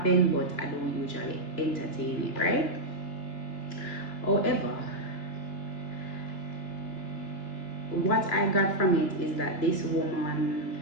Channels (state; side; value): late; right; 2.9 ms